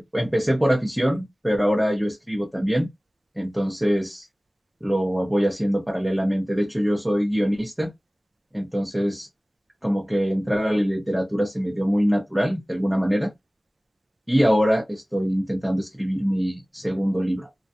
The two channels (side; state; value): both; normal; correlation 0.98